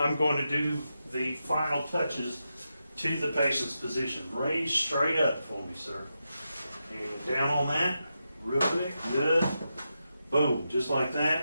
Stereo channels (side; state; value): both; inverted; correlation -0.87